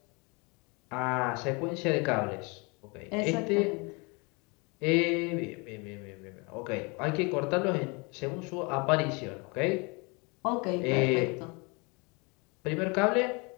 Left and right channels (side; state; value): right; quieter; 29.7 dB